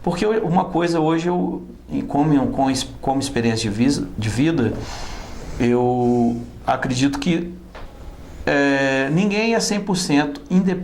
Porque uma coisa hoje, como experiência de vida, eu acredito que ninguém é 100%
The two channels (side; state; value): both; identical; correlation 1.00